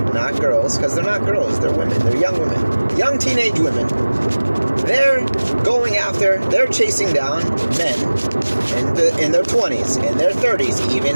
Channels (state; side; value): inverted; both; correlation -1.00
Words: not girls, because they're not girls, they're women. They're young women. Young teenage women. They're they're chasing down men in their 20s, in their 30s,